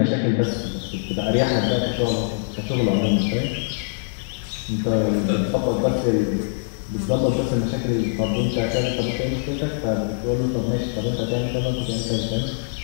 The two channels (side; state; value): right; silent; digital silence